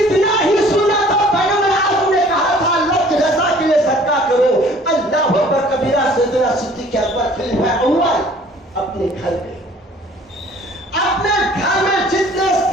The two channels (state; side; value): normal; both; correlation 0.53